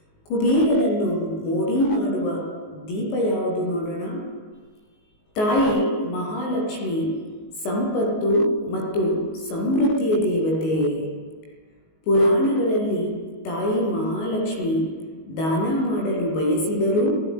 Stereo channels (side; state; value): right; late; 19 ms